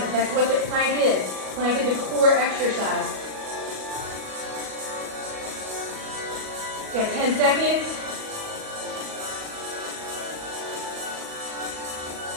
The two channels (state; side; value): late; left; 37 ms